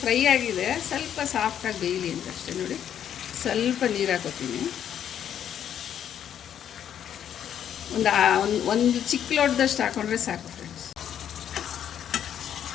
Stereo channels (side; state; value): right; quieter; 9.6 dB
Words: ಫ್ರೈ ಆಗಿದೆ, ಸ್ವಲ್ಪ ಸಾಫ್ಟಾಗಿ ಬೇಯಲಿ ಅಂತ ಅಷ್ಟೇ. ನೋಡಿ, ಸ್ವಲ್ಪ ನೀರು ಹಾಕೋತೀನಿ. ಒಂದು ಚಿಕ್ಕ ಲೋಟದಷ್ಟು ಹಾಕೊಂಡ್ರೆ ಸಾಕು ಫ್ರೆಂಡ್ಸ್.